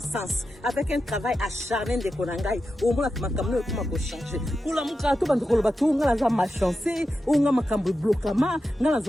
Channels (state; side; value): normal; both; correlation 0.90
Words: avec un travail acharné de konangai au mona ki makamno ko mako changer kula muka to bando koloba to ngala za machancer unga makambo blokama ngala